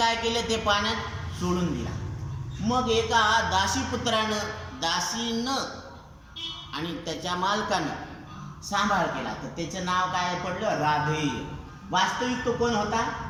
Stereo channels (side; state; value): both; identical; correlation 1.00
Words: केलं? ते पाण्यात सोडून दिला. मग एका दासीपुत्रानं, दासीनं आणि त्याच्या मालकानं सांभाळ केला, तर त्याचं नाव काय पडलं? राधेय. वास्तविक तो कोण होता?